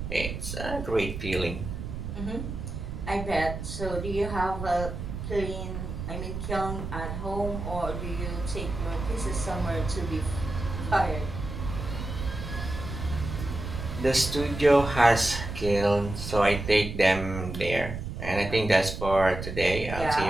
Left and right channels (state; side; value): noise; right; rumble, 6 dB below the sound